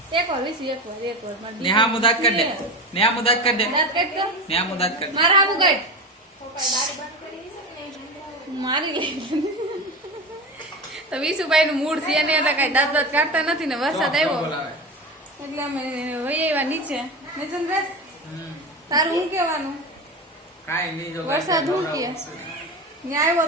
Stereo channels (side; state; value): both; normal; correlation 0.24